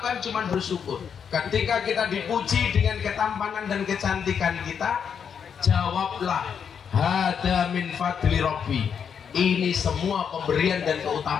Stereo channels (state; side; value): quieter; right; 7.3 dB